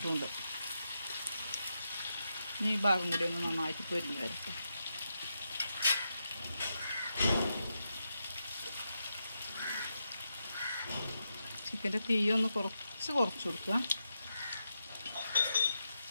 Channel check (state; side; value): inverted; both; correlation -0.86